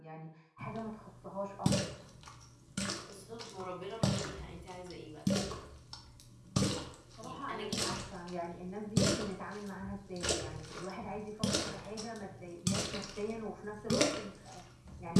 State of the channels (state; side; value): identical; both; correlation 1.00